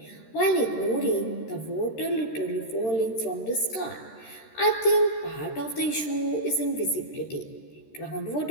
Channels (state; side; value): late; right; 13 ms